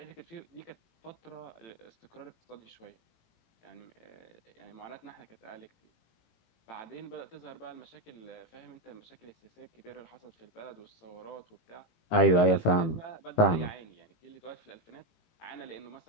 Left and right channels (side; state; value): right; late; 18 ms